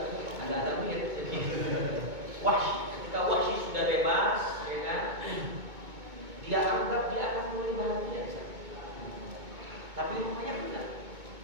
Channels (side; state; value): left; late; 2.2 ms